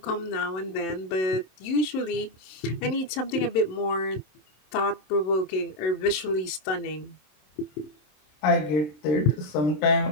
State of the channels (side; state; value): right; late; 27 ms